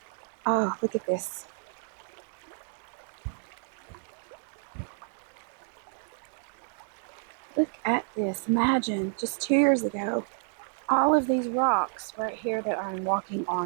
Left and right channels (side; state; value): left; silent; 58 dB below the other